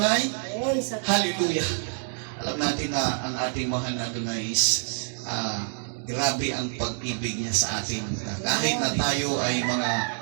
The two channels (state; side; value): silent; left; 60 dB below the other